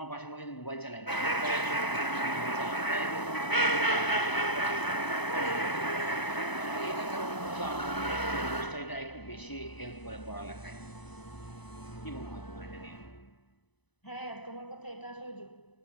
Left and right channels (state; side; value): late; right; 1.0 ms